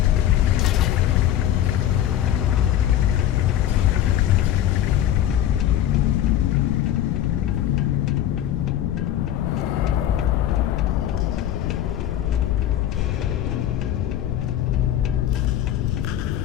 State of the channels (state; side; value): quieter; right; 11.5 dB